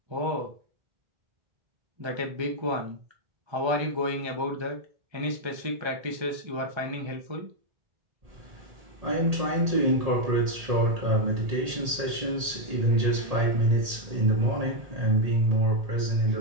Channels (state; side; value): late; left; 1.8 ms